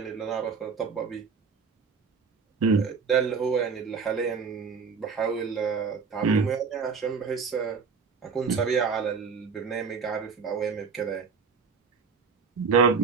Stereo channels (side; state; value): left; quieter; 5.5 dB